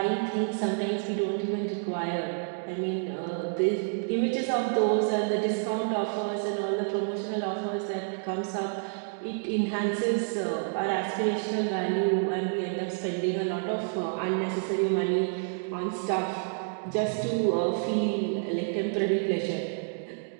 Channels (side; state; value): left; silent; digital silence